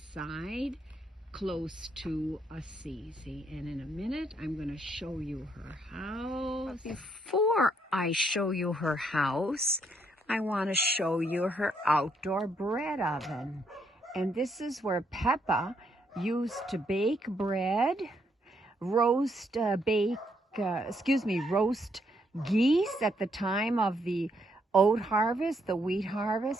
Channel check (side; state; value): both; normal; correlation 0.74